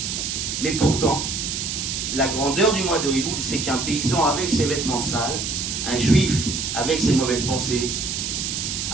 Mais pourtant, la grandeur du mois de Elul, c'est qu'un paysan avec ses vêtements sales, un juif avec ses mauvaises pensées,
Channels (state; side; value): noise; right; hiss, 3 dB below the sound